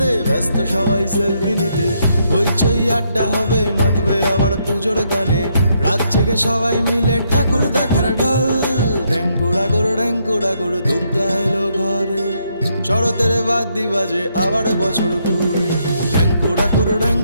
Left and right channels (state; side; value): inverted; both; correlation -0.75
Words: ব্যস্ত সবাই সেলফি নিতে। হইচই আড্ডা হবে, মাতবে আবার পুজোর গানে। রাত জেগে সবাই মিলে ঠাকুর দেখার ঢল। ঢ্যাঙ্কুরা করে দুর্গা এলো ঘরে, শরতের বাদ্যি বাজে আবার বছর ঘুরে। ঢ্যাঙ্কুরা